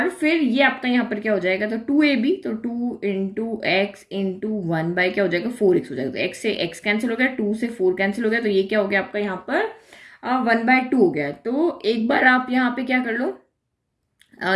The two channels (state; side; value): identical; both; correlation 1.00